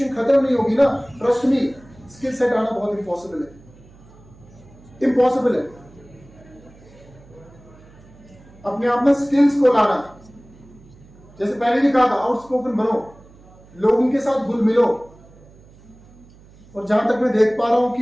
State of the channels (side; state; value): right; noise; hum, 24 dB below the sound